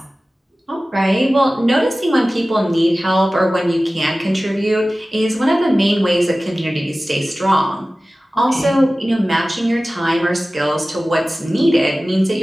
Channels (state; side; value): normal; both; correlation 0.97